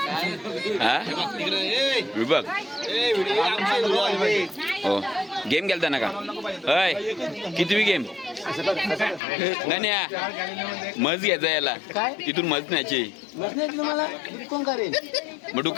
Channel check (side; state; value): right; drops out; at 9.2 s